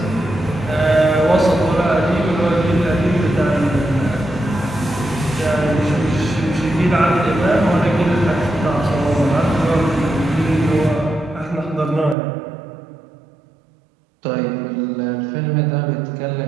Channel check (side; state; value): left; drops out; at 12.2 s